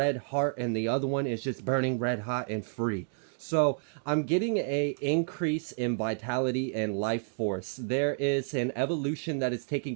heart, and the other one is just burning red hot and free. So I'm getting a increase in vitality and life force. There is an evolution that is taking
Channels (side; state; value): left; silent; digital silence